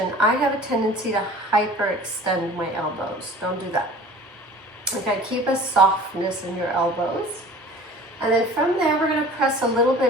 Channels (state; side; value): normal; both; correlation 0.44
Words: I have a tendency to hyperextend my elbows. Don't do that. Okay, keep a softness in your elbows. And then from there, we're going to press a little